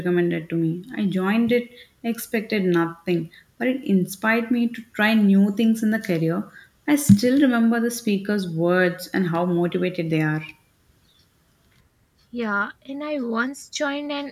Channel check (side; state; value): both; identical; correlation 1.00